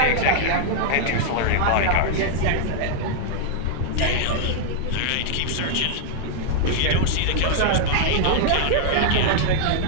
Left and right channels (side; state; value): both; different; correlation -0.01